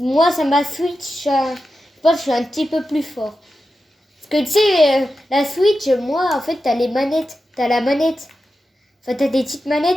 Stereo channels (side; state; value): both; normal; correlation 0.91